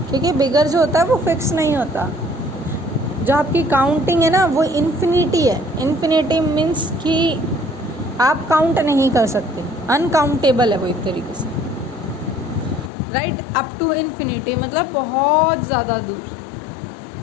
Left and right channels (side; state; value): right; drops out; at 12.9 s